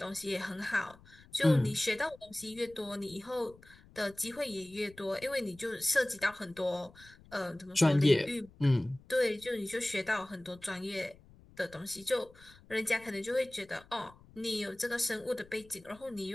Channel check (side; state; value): left; noise; rumble, 24 dB below the sound